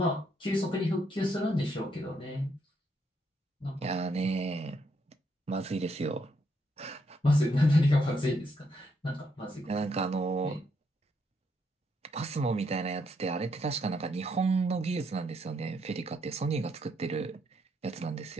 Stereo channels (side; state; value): both; normal; correlation 0.75